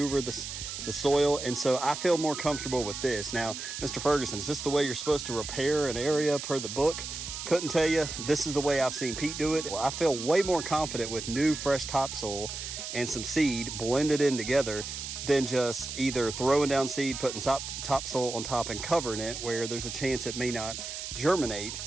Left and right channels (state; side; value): noise; right; hiss, 7 dB below the sound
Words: the soil. And so I feel more comfortable with this. Now, Mr. Ferguson, is this the way you're supposed to repair an area per the book? Couldn't tell you. This is the way I've seen Pete do it. Well, I feel way more confident with new fresh topsoil and some seed blended in together than just either throwing down seed, putting topsoil on top and covering it where there's a chance it may not germinate,